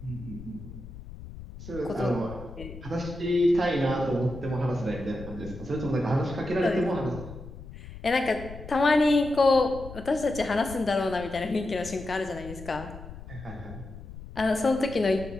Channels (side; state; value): left; noise; rumble, 14 dB below the sound